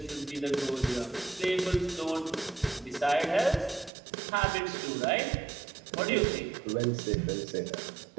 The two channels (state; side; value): drops out; left; at 3.9 s